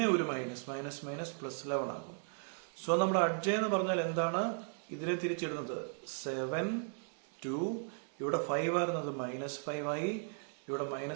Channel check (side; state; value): left; silent; 53 dB below the other